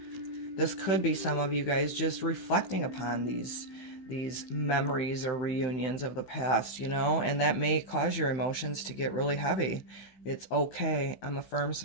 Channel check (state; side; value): late; right; 16 ms